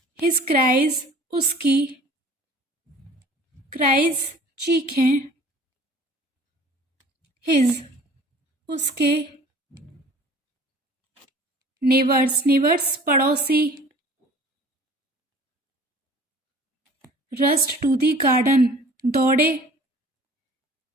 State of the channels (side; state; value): both; normal; correlation 0.48